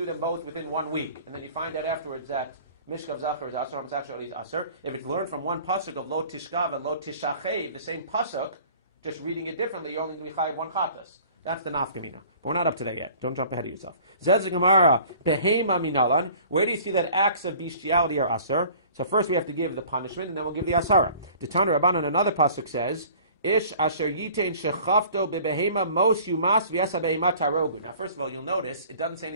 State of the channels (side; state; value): both; inverted; correlation -0.49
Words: them both within 1 week, and then you find out afterwards that Mishkav Zachar is Asur, homosexuality is Asur. If it's learned from one pasuk of Lo Tishkav and Lo Tishachev, the same pasuk, just reading it differently, you're only going to be chayiv one chatas. That's the nafkamina. But we're not up to that yet. Don't jump ahead of yourself. Zez Gemara, Behema Minalan. Where do you see that acts of bestiality are Asur? So first we have to give the punishment, and then we'll give the Asara. The Tana Rabbanan, another pasuk says, Ish asher yitain shechafto bebehema mos yumas v'yasa behema tarogu. Now first of all, you'll notice, it doesn't say